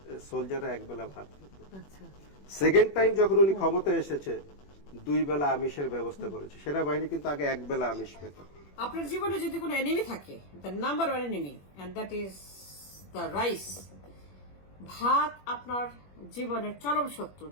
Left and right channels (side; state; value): right; late; 21 ms